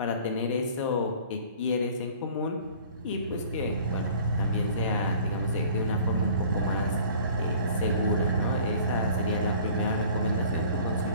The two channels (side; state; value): both; inverted; correlation -0.48